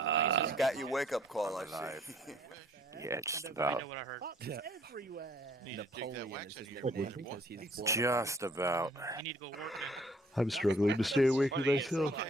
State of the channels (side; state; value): both; normal; correlation 0.60